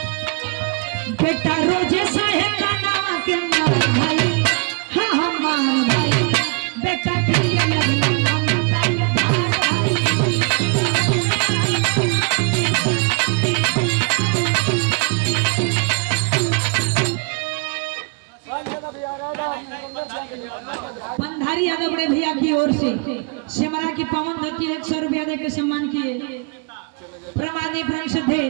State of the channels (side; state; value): left; quieter; 32.9 dB